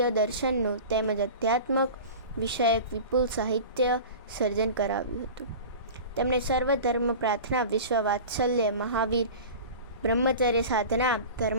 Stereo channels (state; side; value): inverted; both; correlation -0.35